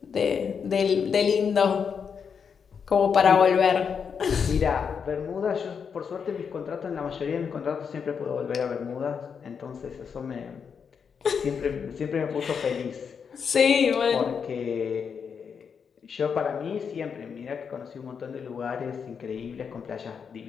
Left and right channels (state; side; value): quieter; right; 6.5 dB